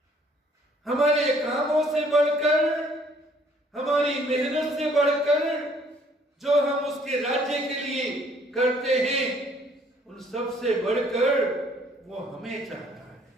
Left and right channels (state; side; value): normal; both; correlation 0.61